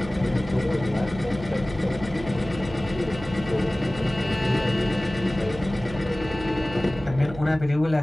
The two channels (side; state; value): right; noise; hum, 13 dB below the sound